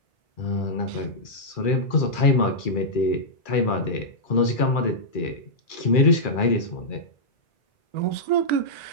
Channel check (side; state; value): right; late; 2.4 ms